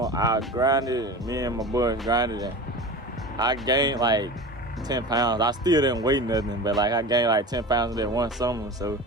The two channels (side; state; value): both; normal; correlation 0.32